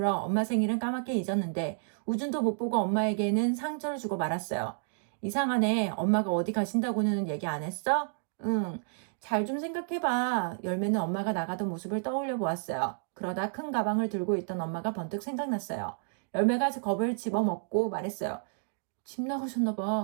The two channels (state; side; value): silent; left; digital silence